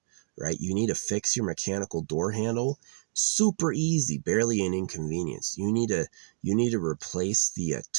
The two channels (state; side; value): silent; left; digital silence